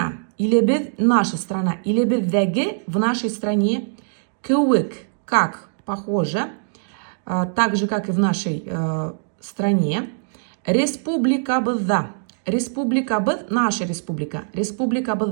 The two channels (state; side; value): silent; left; digital silence